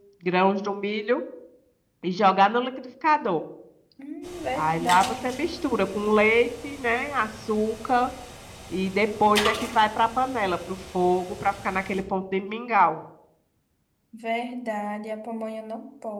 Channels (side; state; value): both; identical; correlation 1.00